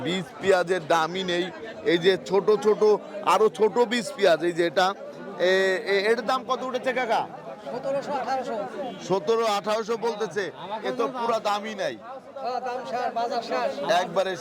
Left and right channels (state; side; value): identical; both; correlation 1.00